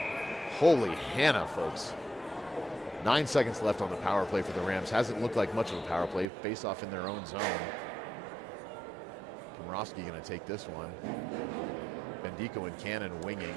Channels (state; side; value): drops out; left; at 6.2 s